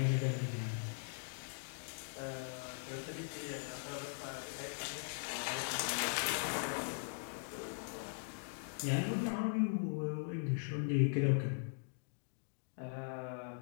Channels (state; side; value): silent; right; digital silence